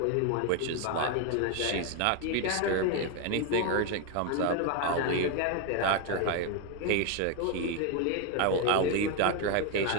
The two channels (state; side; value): different; both; correlation 0.02